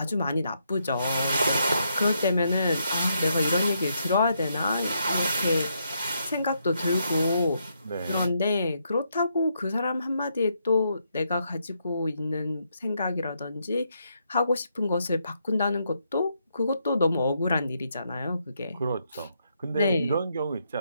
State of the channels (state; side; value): inverted; both; correlation -0.78